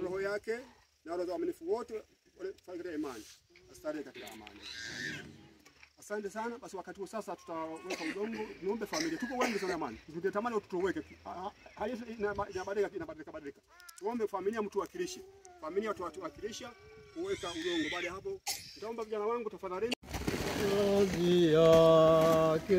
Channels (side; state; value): both; identical; correlation 1.00